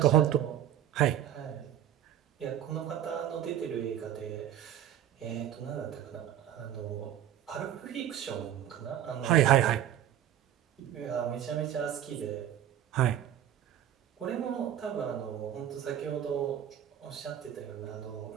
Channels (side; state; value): left; quieter; 11.0 dB